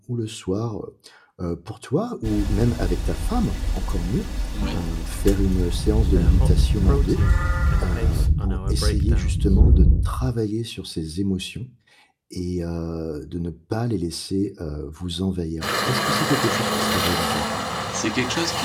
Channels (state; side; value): identical; both; correlation 1.00